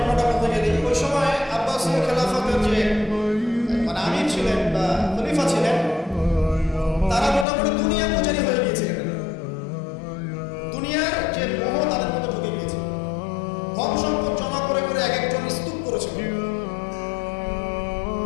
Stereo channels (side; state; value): right; drops out; at 7.5 s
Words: বলতে গেলে, ওই সময় আব্বাসী খেলাফতের যে মানে আমির ছিলেন বা খলিফা ছিলেন, তারা মোটামুটি দুনিয়া পূজারী হয়ে গিয়েছিলেন। দুনিয়ার যে মোহ তাদের মধ্যে ঢুকে গিয়েছে। ধন সম্পদ জমা করে করে এক একজন স্তূপ করেছিল।